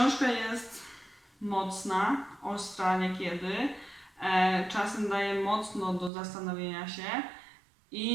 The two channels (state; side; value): drops out; left; at 6.1 s